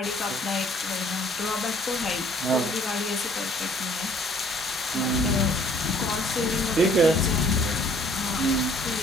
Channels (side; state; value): both; normal; correlation 0.58